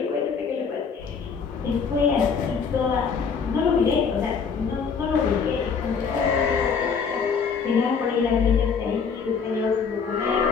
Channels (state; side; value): quieter; right; 5.9 dB